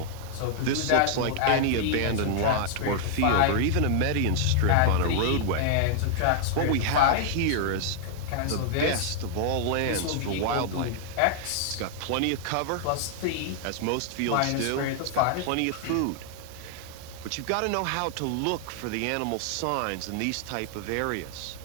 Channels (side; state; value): both; different; correlation 0.00